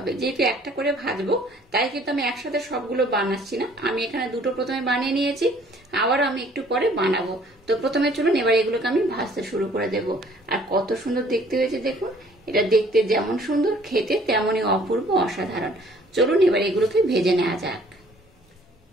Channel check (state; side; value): normal; both; correlation 0.57